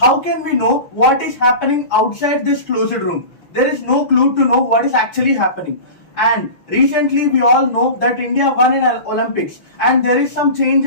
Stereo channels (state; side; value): late; right; 6.3 ms